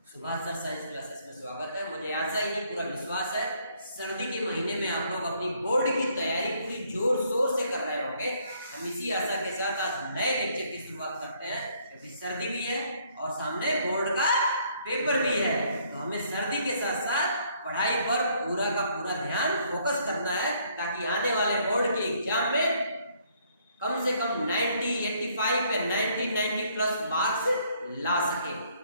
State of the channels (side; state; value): both; inverted; correlation -0.66